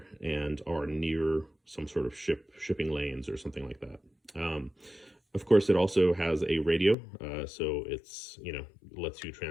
and are near some sort of shipping lanes or something like that. Of course, it also has a radio, so it's, lets you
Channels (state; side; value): drops out; right; at 7.0 s